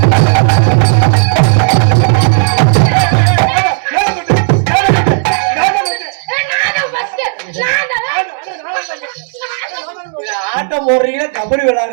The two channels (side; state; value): left; silent; digital silence